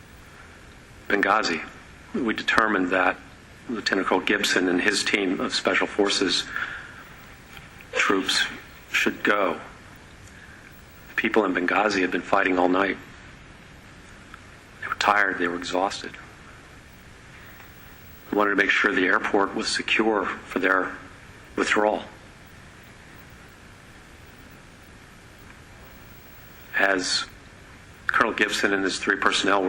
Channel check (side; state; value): both; identical; correlation 1.00